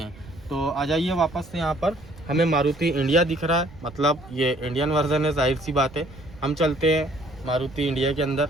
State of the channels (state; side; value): noise; right; rumble, 20 dB below the sound